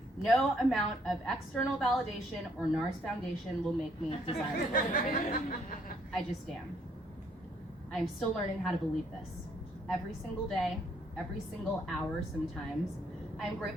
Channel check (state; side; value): normal; both; correlation 0.68